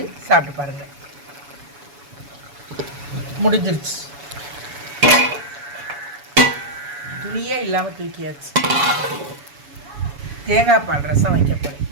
சாப்பிட்டு பாருங்கள். முடிஞ்சிருச்சு. துணியே இல்லாமல் தூக்கியாச்சு. தேங்காய் பால் ரசம் வைக்கப்படும்.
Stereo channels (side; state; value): left; late; 7.1 ms